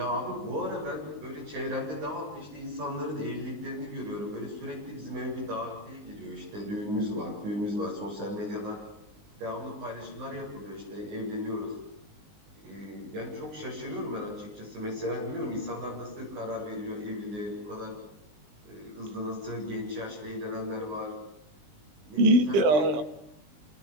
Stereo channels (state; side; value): late; left; 20 ms